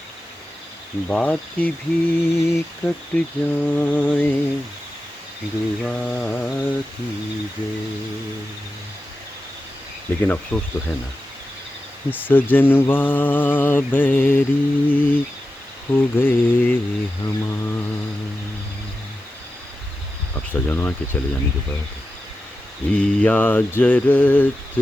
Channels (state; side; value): normal; both; correlation 0.91